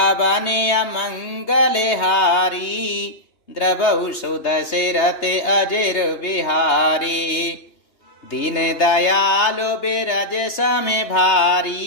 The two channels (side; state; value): right; late; 2.9 ms